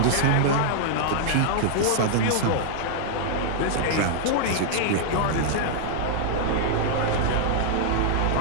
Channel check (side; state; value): both; different; correlation -0.01